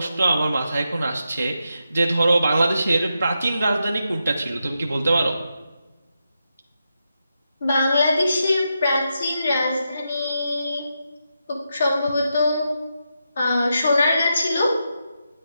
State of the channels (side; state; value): both; inverted; correlation -0.86